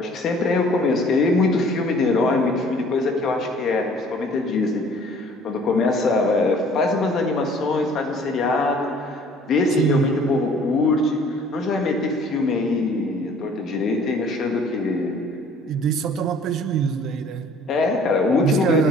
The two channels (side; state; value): both; normal; correlation 0.54